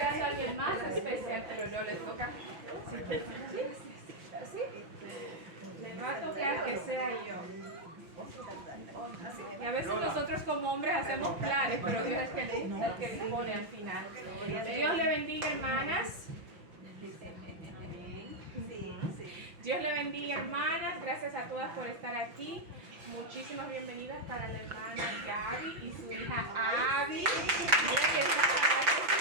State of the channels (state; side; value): late; left; 6.0 ms